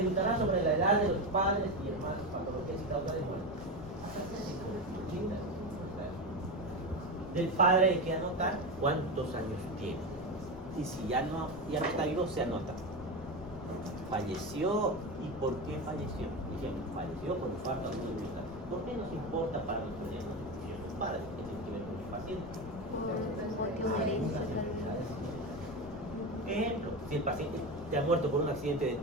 sobre la edad de los padres y hermanos, patologías y causa de muerte. Del padre hay que anotar cuántos años tiene. Y si ya no está vivo, se anota. Falleció, ¿y por qué falleció? Dijimos, falleció por falta de voluntad. ¿Por qué nos importa para los padres que tienen que ver con el paciente? Ejemplo, si el paciente ya ha muerto por un accidente de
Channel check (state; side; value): noise; left; rumble, 16 dB below the sound